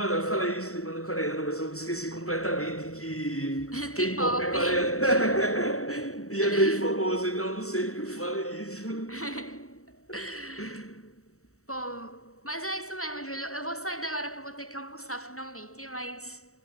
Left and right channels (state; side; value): late; right; 0.64 ms